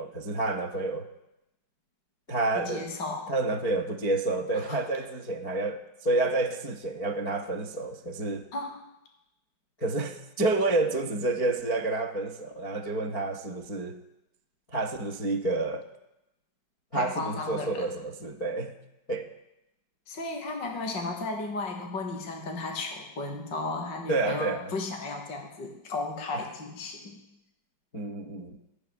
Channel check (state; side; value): late; right; 4.5 ms